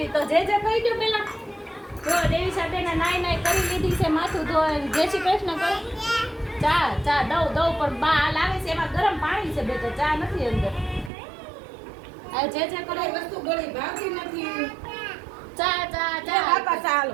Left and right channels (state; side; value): drops out; left; at 11.1 s